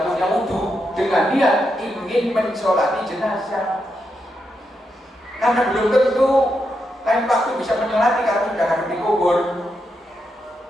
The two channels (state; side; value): normal; both; correlation 0.83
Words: punya wudhu dengan niat ingin mensolati jenazah. Karena belum tentu lain waktu bisa mensolati karena sudah harus dikubur.